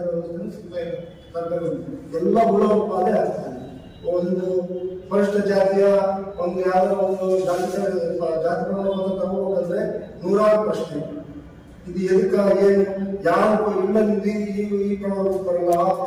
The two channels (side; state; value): both; identical; correlation 1.00